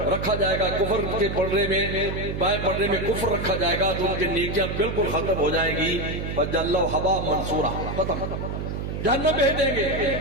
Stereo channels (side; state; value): right; noise; hum, 4 dB below the sound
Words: رکھا جائے گا, کفر کے پڑھنے میں بائیں پڑھنے میں کفر رکھا جائے گا, تو ان کی نیکیاں بالکل ختم ہو جائیں گی. فجعلہ حباء منصورا, ختم, جہنم بھیج دیں گے.